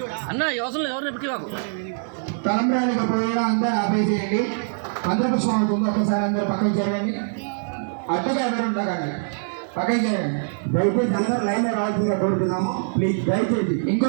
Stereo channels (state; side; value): silent; left; 63 dB below the other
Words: అన్న, అవసరం లేదు. ఎవరిని పిచ్చివాకు తలంబ్రానికి పోయడం అందరూ ఆపేసేయండి. మంత్రిపుష్పం అవుతుంది. ఒకసారి అందరూ పక్కకి చేయండి. అడ్డుగా ఎవరు ఉండకండి, పక్కకి చేయండి. దయచేసి అందరూ లైన్ లో రావాల్సిందిగా కోరుతున్నాము ప్లీజ్. దయచేసి